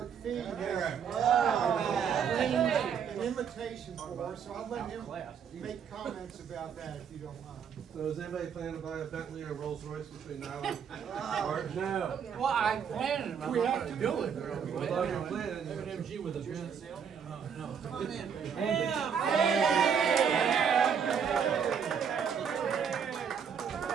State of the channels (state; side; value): quieter; left; 7.2 dB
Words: Fee has an invitation for us, so I'll let him make comments about that if you don't mind. So is anybody planning to buy a Bentley or Rolls Royce between now and March? No. Well, I planned it, I'm We not have gonna to do it. Well, if you're planning, MG with a Benz.